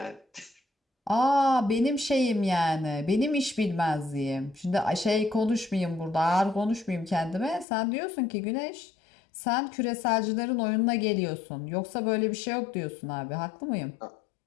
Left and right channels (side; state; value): right; drops out; at 7.7 s